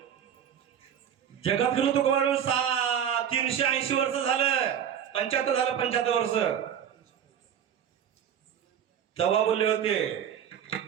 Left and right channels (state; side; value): quieter; left; 8.9 dB